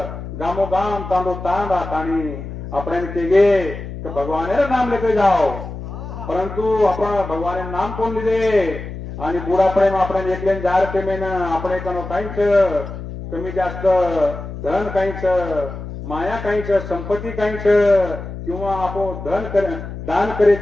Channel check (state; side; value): noise; left; hum, 9 dB below the sound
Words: गामोगाम तांडो तांडा ताणी आपण केगे तो भगवान नाम लेके जाओ परंतु आपण भगवान नाम कोण लिहिले आणि बुढापणे आपण एकलेन जार पेमेन आपण कनो काहीच कमी जास्त धन काहीच माया काहीच संपत्ती काहीच किंवा आपण दान करे